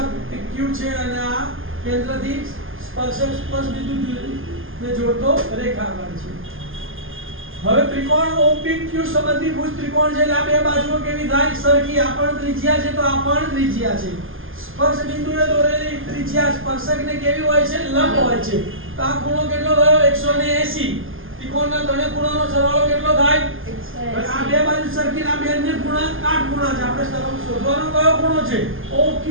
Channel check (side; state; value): left; late; 0.59 ms